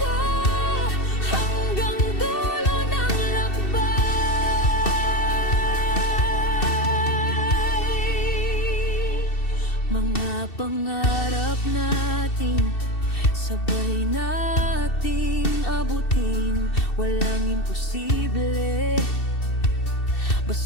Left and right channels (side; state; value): right; late; 2.7 ms